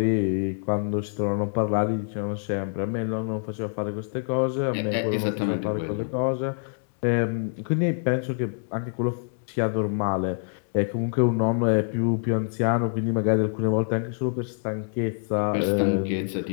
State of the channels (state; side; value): silent; right; digital silence